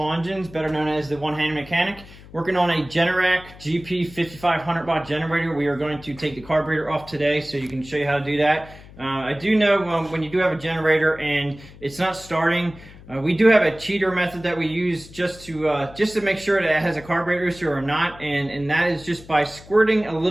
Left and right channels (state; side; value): noise; left; hum, 20 dB below the sound